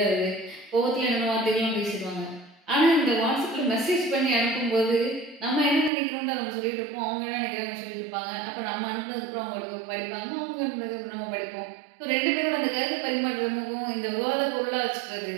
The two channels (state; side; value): drops out; left; at 5.9 s